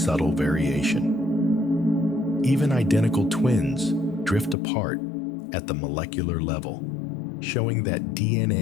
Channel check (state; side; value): drops out; right; at 4.5 s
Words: variation. Even identical twins drift apart at the molecular level, showing that